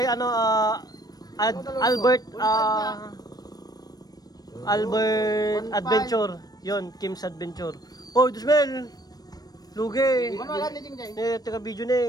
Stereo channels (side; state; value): right; late; 0.19 ms